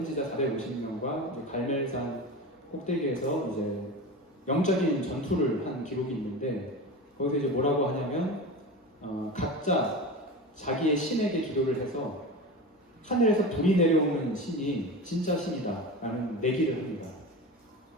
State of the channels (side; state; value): both; normal; correlation 0.27